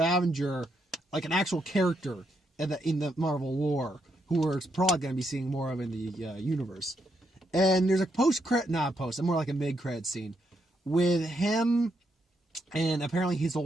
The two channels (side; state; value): both; normal; correlation 0.79